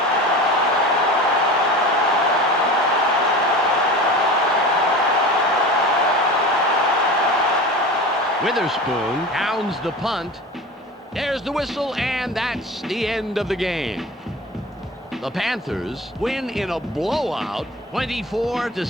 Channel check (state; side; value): normal; both; correlation 0.34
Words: Witherspoon downs the punt. There's the whistle, and that's the end of the game. The Panthers win in a blowout,